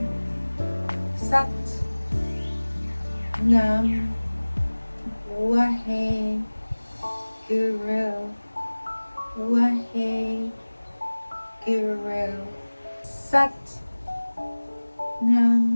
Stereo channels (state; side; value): inverted; both; correlation -1.00